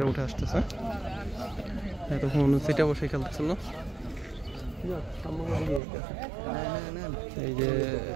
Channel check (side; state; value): left; drops out; at 5.8 s